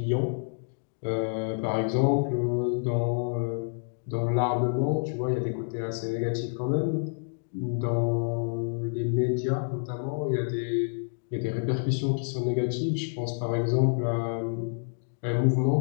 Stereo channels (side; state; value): right; silent; digital silence